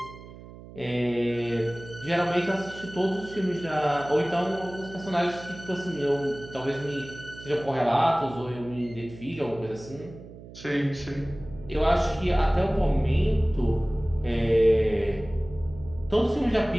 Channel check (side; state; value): right; noise; hum, 17 dB below the sound